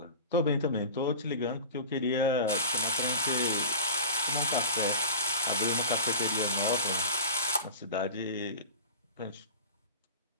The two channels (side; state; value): both; inverted; correlation -0.32